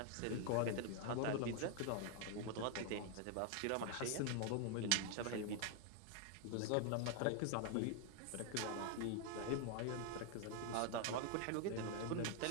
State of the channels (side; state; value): both; different; correlation 0.00